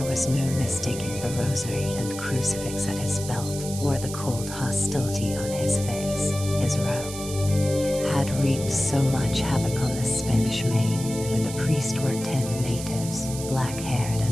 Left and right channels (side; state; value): right; noise; hiss, 10 dB below the sound